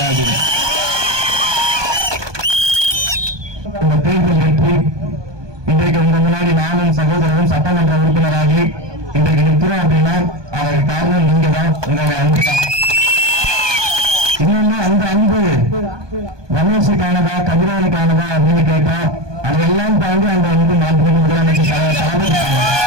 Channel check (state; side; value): late; left; 1.2 ms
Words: இந்த தேர்தல் வெற்றி இன்றைக்கு உங்க முன்னாடி நானும் சகோதரரும் சட்டமன்ற உறுப்பினராகி இன்றைக்கு நிற்கிறோம் அப்படின்னா அதற்கு காரணம் நீங்க தான், உங்களுடைய அன்பு தான். இன்னொன்னு அந்த அன்பு ரமேஷுக்கானதா கதிரவனுக்கானதா அப்படின்னு கேட்டா அதையெல்லாம் தாண்டி அந்த அன்பு மாண்புமிகு முதலமைச்சர் தளபதிக்கான